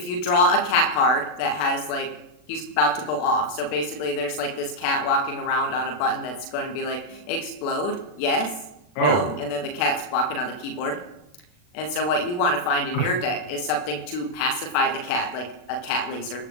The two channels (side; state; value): right; late; 40 ms